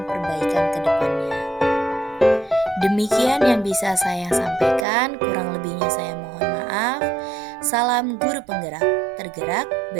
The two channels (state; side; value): drops out; left; at 4.9 s